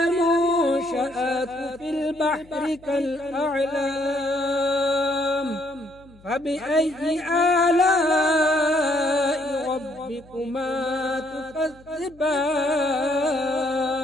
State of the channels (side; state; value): left; noise; hum, 25 dB below the sound